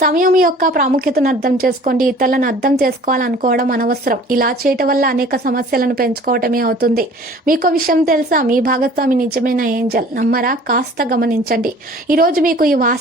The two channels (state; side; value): normal; both; correlation 0.49